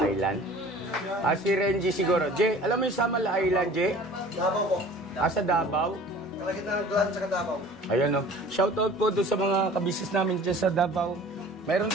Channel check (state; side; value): normal; both; correlation 0.46